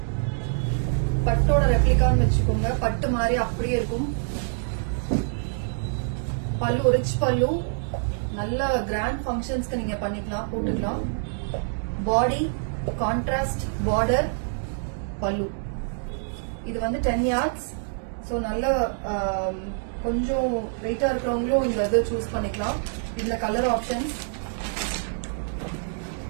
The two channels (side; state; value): left; silent; digital silence